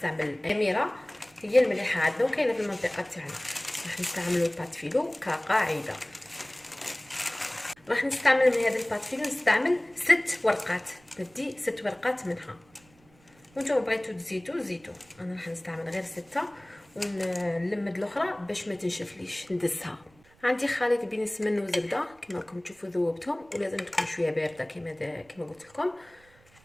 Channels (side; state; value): right; noise; rumble, 30 dB below the sound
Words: اميره هي المليحه عندنا وكاينه في المنطقه تاعنا. راح نستعملوا بات فيلو كقاعده. راح نستعمل من هذا البات فيلو نستعمل 6 ورقات. ندي 6 ورقات منها، وانتم بغيتو تزيدوا. انا راح نستعمل غير 6 ونلمد الاخرى باش ما تنشفليش ندسها. عندي خليط بين السمن والزبده كما راكم تشوفوا ذوبتهم، ولازم تكون شويه بارده كما قلت لكم.